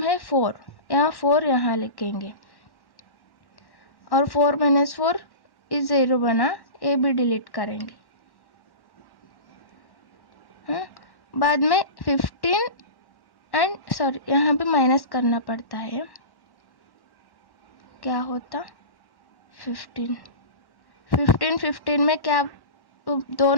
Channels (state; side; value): late; right; 1.1 ms